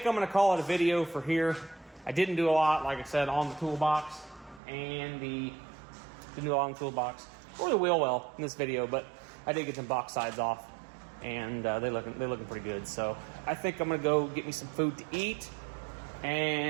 I'm going to call it a video for here. I didn't do a lot, like I said, on the toolbox and didn't do a lot on the toolbox or the wheel well in this video, but I did get some box sides off, and they're looking pretty good. So I think I'm gonna go get me some food to eat,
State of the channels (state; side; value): drops out; left; at 4.6 s